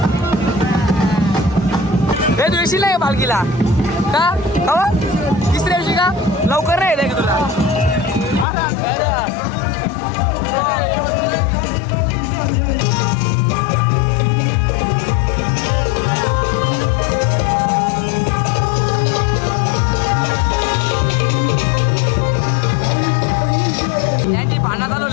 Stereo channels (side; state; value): right; drops out; at 8.5 s